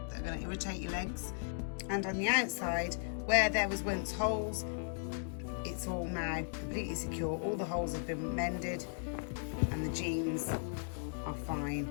that are going to irritate your legs. And on the outside, where there was once holes, it's all now completely secure. All the holes have been mended, and the jeans are fine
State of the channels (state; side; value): silent; right; digital silence